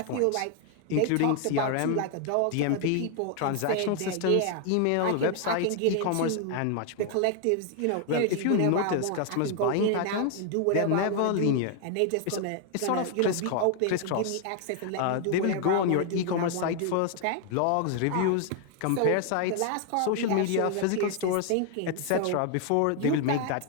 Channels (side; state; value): both; different; correlation 0.00